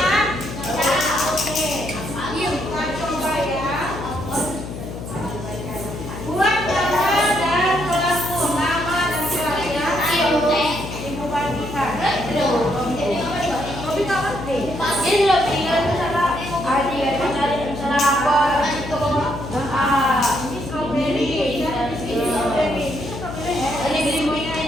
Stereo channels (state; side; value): noise; left; hum, 9 dB below the sound